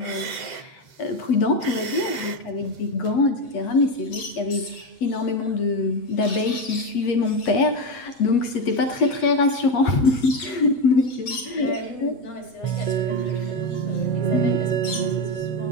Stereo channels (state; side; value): late; right; 7.9 ms